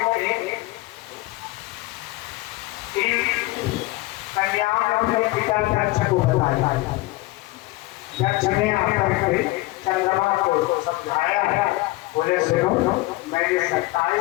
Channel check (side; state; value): right; quieter; 20.2 dB